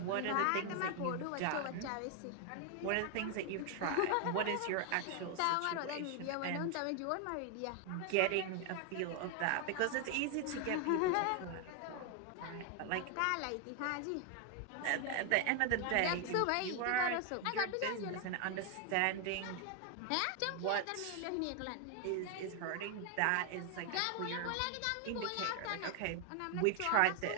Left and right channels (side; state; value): both; different; correlation 0.01